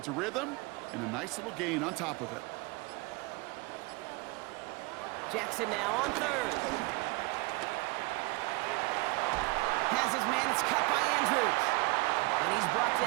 rhythm and a nice little gain on top of it. Jackson now on 3rd. Has his man, it's cut by Andrews. And he's brought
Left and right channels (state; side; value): quieter; left; 24.7 dB